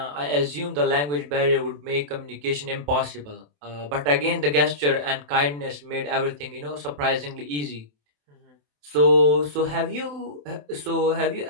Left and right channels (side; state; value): left; late; 27 ms